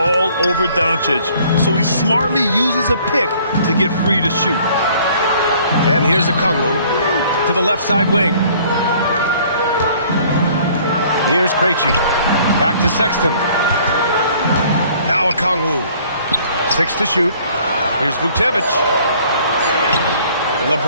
over Doncic, so he smartly uses a pick to get free to shoot. And here's Okongwu to the left side wing. Here's Krejci. Back to Sexton. Now Okongwu. 6 to shoot. Here's Vucevic.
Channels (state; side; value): inverted; both; correlation -0.57